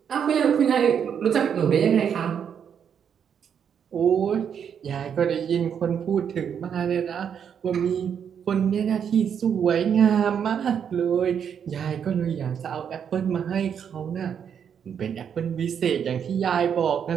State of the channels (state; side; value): quieter; left; 7.9 dB